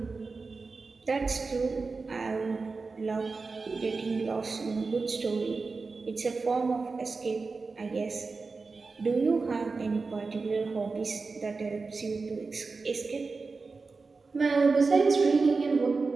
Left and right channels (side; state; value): left; quieter; 4.2 dB